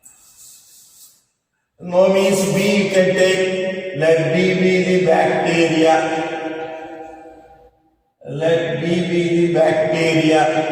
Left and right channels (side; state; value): both; identical; correlation 1.00